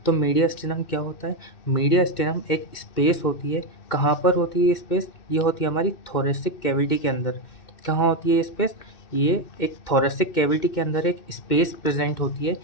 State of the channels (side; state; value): right; late; 2.6 ms